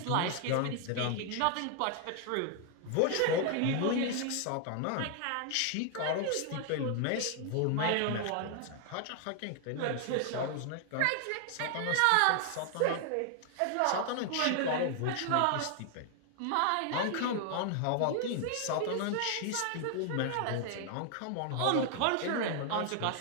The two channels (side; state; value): both; different; correlation 0.00